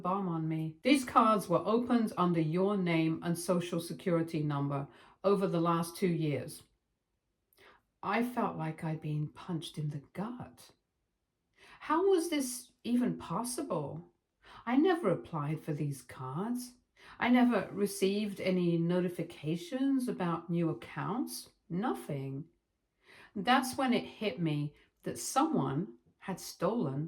on me. These cards were opened under your name and social security number over the last 2 years. I felt like I'd been punched in the gut. How was this even possible? I never applied for these cards. I never received any notifications about new accounts. Nothing. That's when it hit me that someone had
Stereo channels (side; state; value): both; identical; correlation 1.00